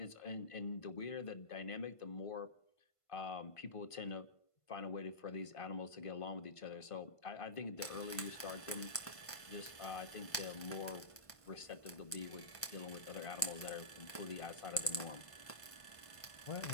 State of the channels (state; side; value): late; right; 1.5 ms